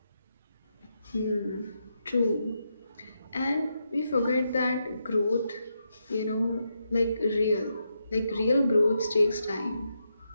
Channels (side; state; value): both; inverted; correlation -0.83